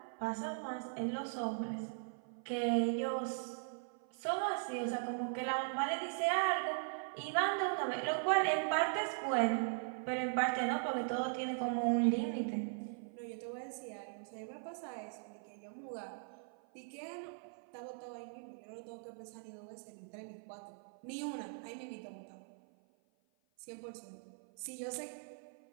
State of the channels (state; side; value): silent; left; 51 dB below the other